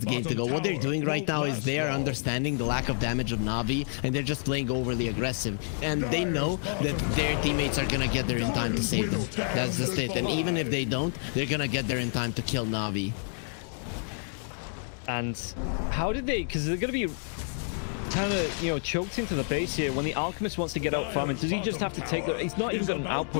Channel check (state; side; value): silent; right; 59 dB below the other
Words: to go. What they're doing right now is they are understanding the lack of damage of Na'Vi, and they're just playing overly aggressive. And they know that their teammates are gonna get there in time to save them. That's just it. And even if they don't, they're gonna get there in time to kill Na'Vi. And how did they? Because they're gonna be kind of, you know, choked into the base here. When the Alchemist wants to get out farming, does he just have to take the... He's not even got an